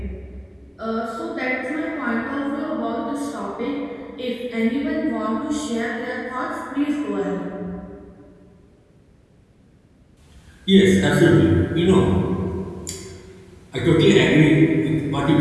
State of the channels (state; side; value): identical; both; correlation 1.00